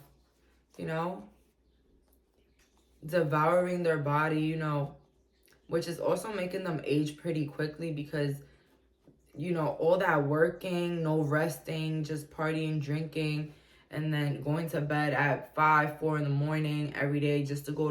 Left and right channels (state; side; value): identical; both; correlation 1.00